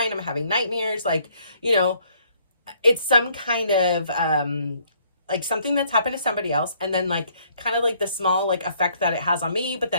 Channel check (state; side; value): inverted; both; correlation -0.65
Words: I'm having nightmares. Like, it's some kind of, like something that's happened to somebody else, and then like kind of like the small like effect that it has on me, but